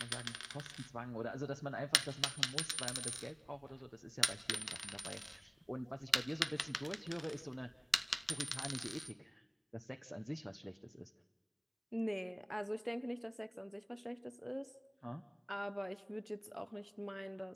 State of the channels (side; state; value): both; identical; correlation 1.00